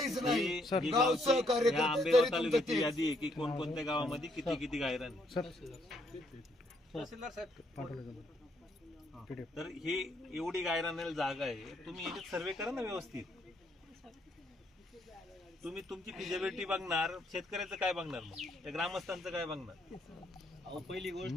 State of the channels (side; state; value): both; normal; correlation 0.71